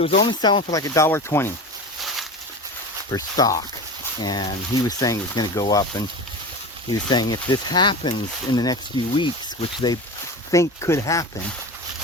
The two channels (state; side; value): normal; both; correlation 0.29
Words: was only selling for like $1.20 per stock. And he was saying it was going to go up. And he was saying if this happens in the next few weeks, which they think could happen,